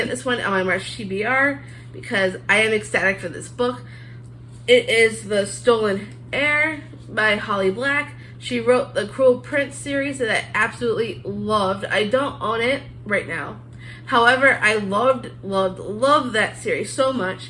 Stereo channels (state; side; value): identical; both; correlation 1.00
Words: this one on my March TBR because I am ecstatic for this book. It is The Stolen Heir by Holly Black. She wrote the Cruel Prince series that I absolutely loved. I don't own it right now. However, I loved that series so much.